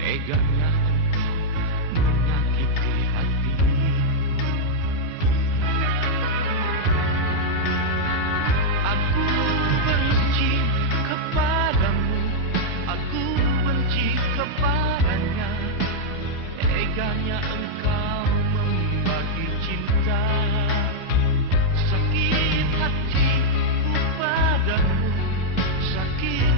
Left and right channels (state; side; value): normal; both; correlation -0.04